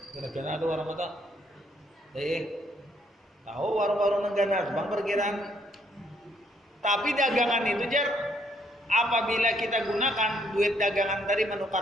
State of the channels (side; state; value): both; normal; correlation 0.70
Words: Gara-gara ada warung atau tahu warung-warung manggana bang perkiraan. Tapi dagangan itu jar apabila kita gunakan duit dagangan tadi